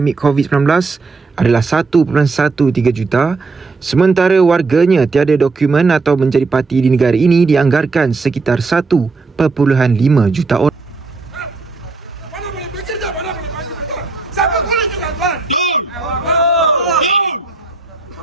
COVID-19 adalah 1.13 juta, sementara warganya tiada dokumen atau menjadi parti di negara ini dianggarkan sekitar 1.5 juta orang. Mana boleh bekerja, mana boleh bekerja. Siapa bekerja, tuan?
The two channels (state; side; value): quieter; left; 4.0 dB